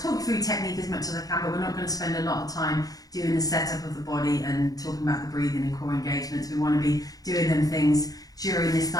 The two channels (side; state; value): right; late; 0.18 ms